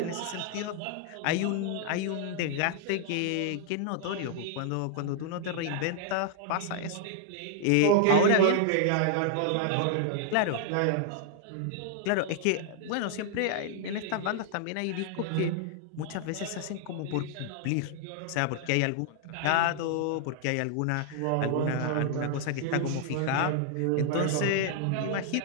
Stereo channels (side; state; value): both; different; correlation -0.01